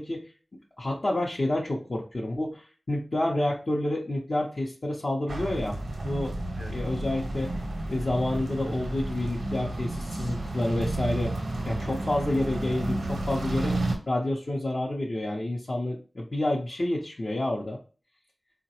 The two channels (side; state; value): both; normal; correlation 0.96